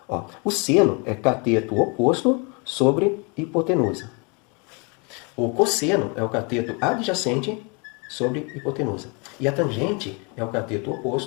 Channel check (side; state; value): right; quieter; 32.4 dB